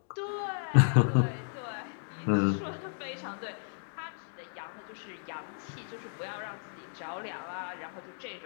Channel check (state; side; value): silent; right; digital silence